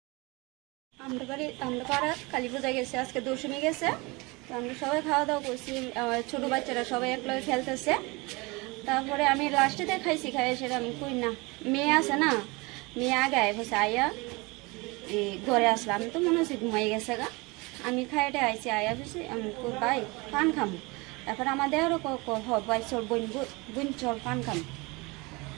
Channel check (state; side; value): quieter; left; 25.7 dB